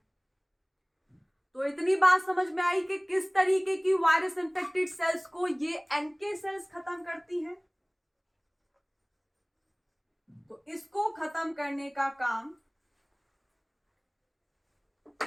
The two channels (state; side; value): identical; both; correlation 1.00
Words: तो इतनी बात समझ में आई कि किस तरीके की वायरस इन्फेक्टेड सेल्स को ये NK सेल्स खत्म करती हैं। तो इसको खत्म करने का काम